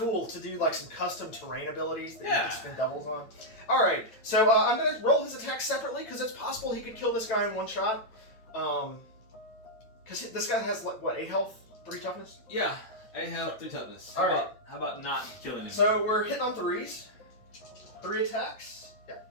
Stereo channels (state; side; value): late; right; 9.1 ms